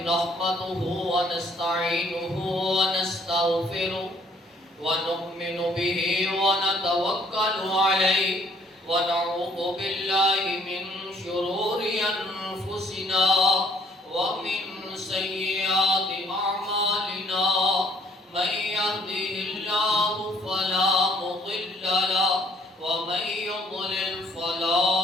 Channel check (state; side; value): normal; both; correlation 0.61